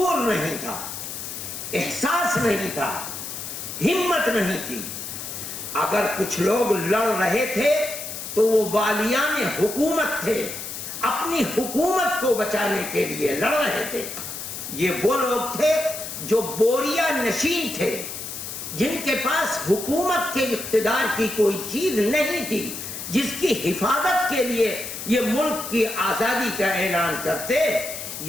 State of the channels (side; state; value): left; noise; hiss, 8 dB below the sound